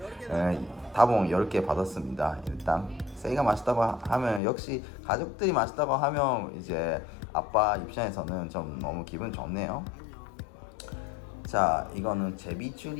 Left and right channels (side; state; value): right; drops out; at 4.4 s